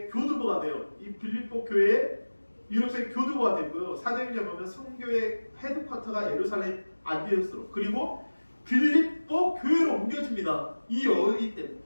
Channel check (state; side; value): inverted; both; correlation -1.00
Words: 교두보가 돼요. 이 빌립보 교회의 유럽 선교회 교두보가 되고요. 사도행전 보면 선교회 헤드쿼터가 예루살렘 안디오스로 그리고 빌립보 교회로 옮겨집니다. 이 여인 때문에.